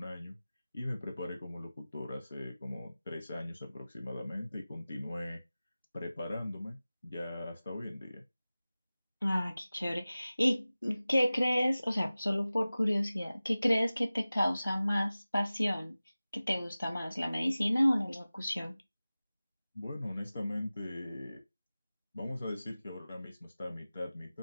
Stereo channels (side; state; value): both; inverted; correlation -0.97